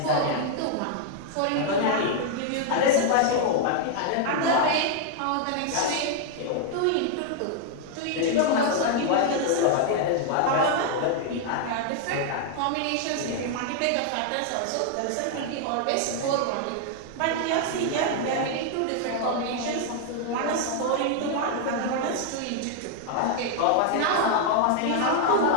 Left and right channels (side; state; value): both; different; correlation 0.00